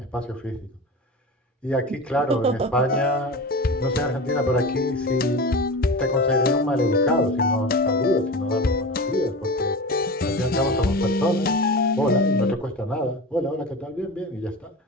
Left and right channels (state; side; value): normal; both; correlation 0.29